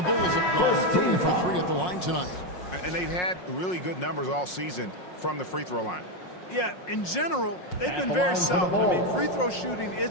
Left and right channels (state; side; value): late; right; 5.5 ms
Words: Bulls have gone 3 for 3 at the line tonight. And they've had really good numbers all season from the free throw line. Yeah, in general, they've been very solid. I mean, free throw shooting